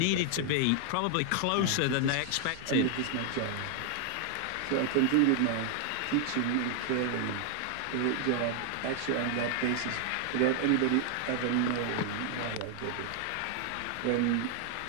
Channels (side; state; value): both; different; correlation 0.00